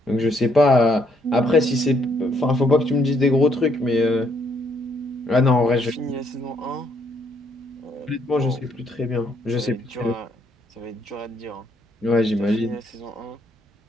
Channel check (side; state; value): both; normal; correlation 0.71